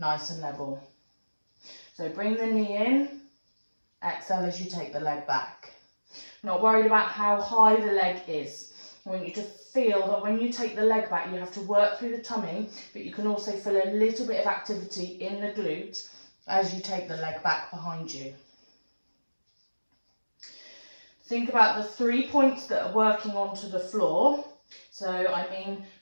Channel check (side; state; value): both; inverted; correlation -1.00